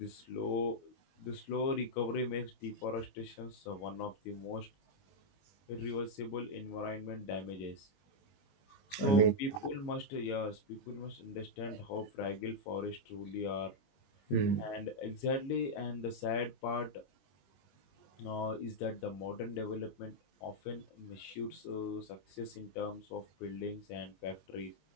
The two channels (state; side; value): late; right; 22 ms